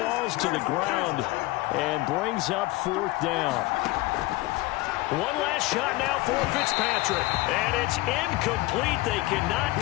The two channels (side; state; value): right; quieter; 20.0 dB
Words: to the ground, and brings up 4th down. One last shot now for Fitzpatrick. And it's incomplete. They cannot